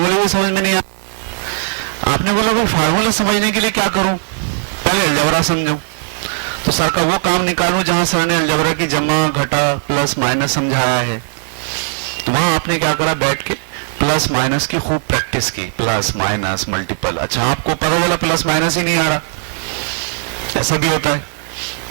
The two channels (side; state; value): left; silent; digital silence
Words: بھی سمجھ میں نہیں آ. آپ نے بولا بھائی فارمولے سمجھنے کے لیے کیا کروں، پہلے الجبرا سمجھو. تو سر کا وہ کام نکالوں جہاں سر نے الجبرا کی جمع، گھٹا، پلس مائنس سمجھایا ہے. وہاں آپ نے کیا کرا، بیٹھ کے پلس مائنس کی خوب پریکٹس کی، پلس مائنس ملٹیپل. اچھا آپ کو پتا چلا پلس مائنس ہی نہیں آ رہا، ایسا بھی ہوتا